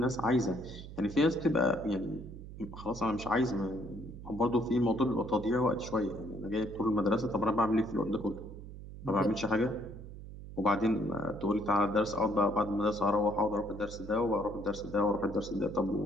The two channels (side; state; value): right; noise; hum, 13 dB below the sound